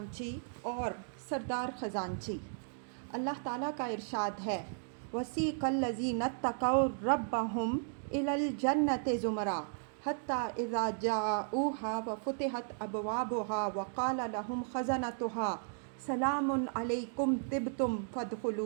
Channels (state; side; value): silent; left; digital silence